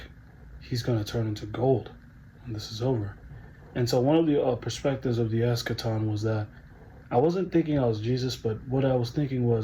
he's gonna turn into gold when this is over. And so one of the perspectives of the eschaton was that I wasn't thinking I was Jesus, but what I was thinking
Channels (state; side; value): identical; both; correlation 1.00